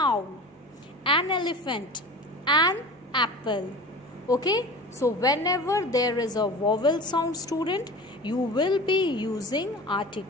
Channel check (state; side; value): normal; both; correlation 0.36